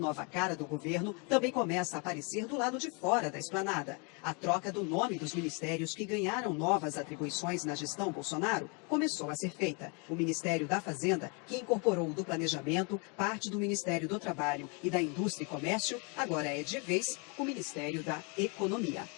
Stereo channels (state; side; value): quieter; right; 33.7 dB